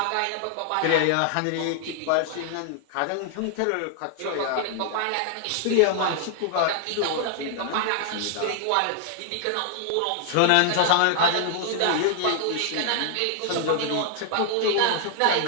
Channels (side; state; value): both; different; correlation 0.00